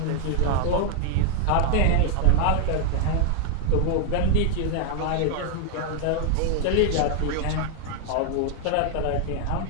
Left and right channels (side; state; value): both; different; correlation 0.00